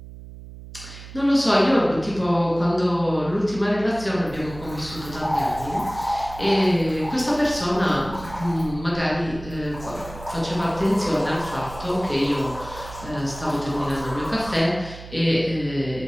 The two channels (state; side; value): noise; right; hum, 15 dB below the sound